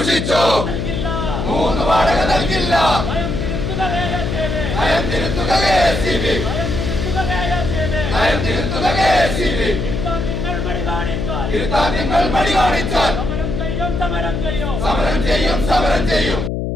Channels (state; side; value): noise; left; hum, 2 dB below the sound